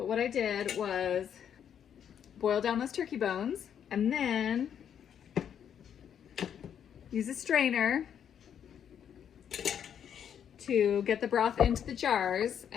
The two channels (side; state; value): right; quieter; 8.7 dB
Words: what I did was boil down those turkey bones, and then use a strainer to get the broth into the jars.